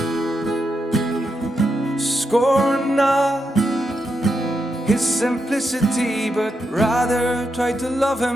Scorn not his simplicity, but rather try to love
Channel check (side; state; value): both; normal; correlation 0.84